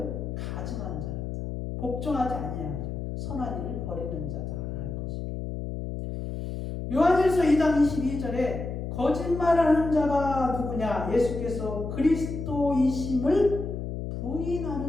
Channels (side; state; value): left; noise; hum, 5 dB below the sound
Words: 가증한 자다. 복종하지 아니하는 자, 선한 일을 버리는 자다라는 것입니다. 요한일서 2장 22절에 거짓말하는 자가 누구냐? 예수께서 그리스도이심을